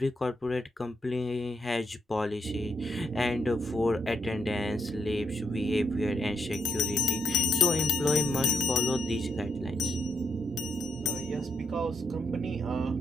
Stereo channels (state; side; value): normal; both; correlation 0.75